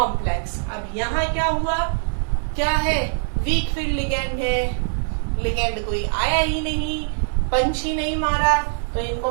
अब यहाँ क्या हुआ? क्या है? वीक फील्ड लिगेंड है, लिगेंड कोई आया ही नहीं, पंच ही नहीं मारा, तो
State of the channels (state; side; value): silent; left; digital silence